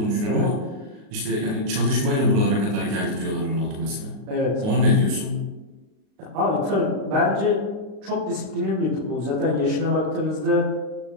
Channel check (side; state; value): left; late; 38 ms